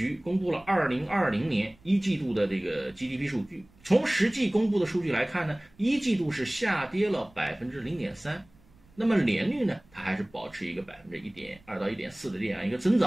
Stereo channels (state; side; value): noise; right; rumble, 29 dB below the sound